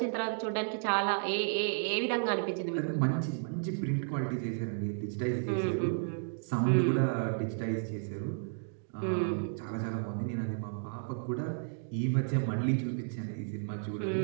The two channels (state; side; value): silent; left; digital silence